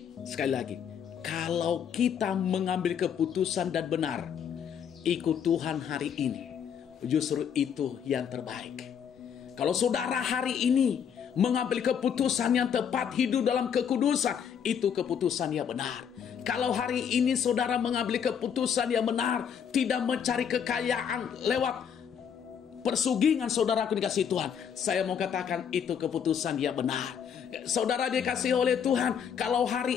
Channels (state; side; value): quieter; right; 7.9 dB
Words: sekali lagi, kalau kita mengambil keputusan dan benar, ikut Tuhan hari ini, justru itu yang terbaik. Kalau saudara hari ini mengambil keputusan yang tepat, hidup dalam kekudusan, itu keputusan yang benar. Kalau hari ini saudara mengambil keputusan yang benar, tidak mencari kekayaan lewat persugingan, saudaraku dikasih Tuhan, saya mau katakan itu keputusan yang benar. Saudara dikasihi oleh Tuhan, kalau